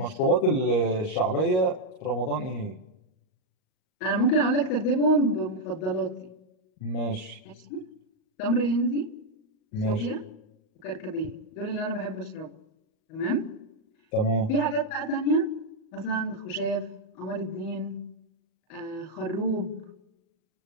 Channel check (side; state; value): right; late; 38 ms